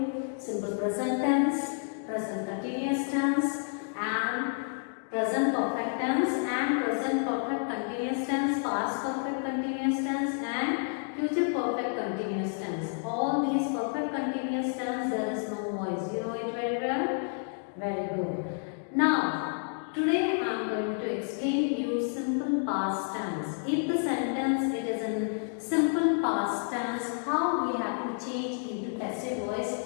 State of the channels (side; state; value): right; silent; 58 dB below the other